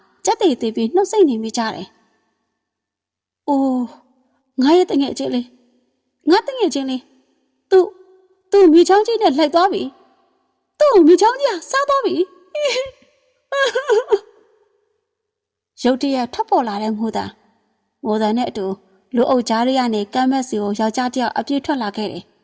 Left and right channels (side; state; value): both; identical; correlation 1.00